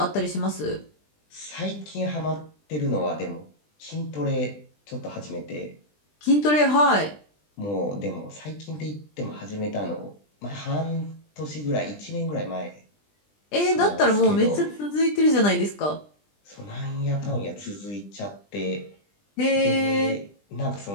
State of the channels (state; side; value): late; right; 20 ms